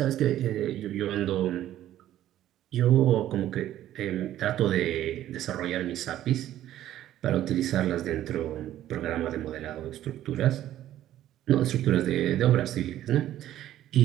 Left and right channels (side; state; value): left; quieter; 12.7 dB